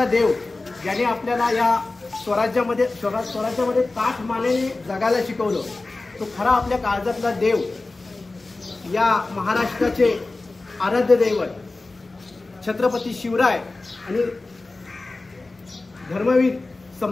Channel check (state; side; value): quieter; right; 3.3 dB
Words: देव ज्याने आपल्याला या स्वराज्यामध्ये ताठ मानेने जगायला शिकवलं, तो खरा आपल्या काळजातला देव या महाराष्ट्राचे आराध्य दैवत छत्रपती शिवराय आणि धर्मवीर